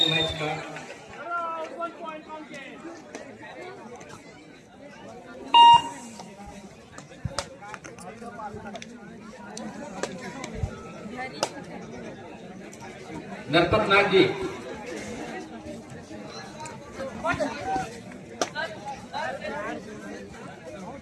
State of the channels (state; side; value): identical; both; correlation 1.00